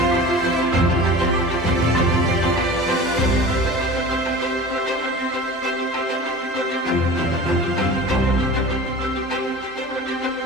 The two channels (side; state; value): both; normal; correlation 0.37